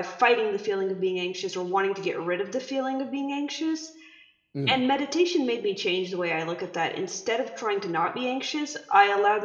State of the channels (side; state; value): both; identical; correlation 1.00